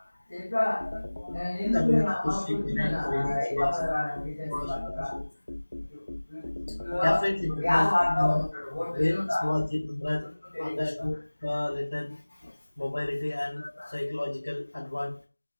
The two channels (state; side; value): inverted; both; correlation -1.00